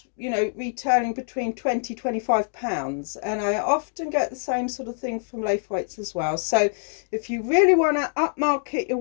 you know, retailing between £20-25, and I often get the same sort of thing from Laithwaites as well. So if you really want to upmarket your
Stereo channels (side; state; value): right; silent; digital silence